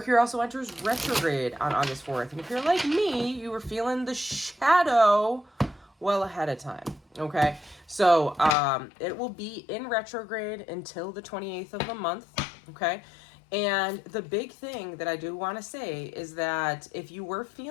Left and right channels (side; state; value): right; drops out; at 8.6 s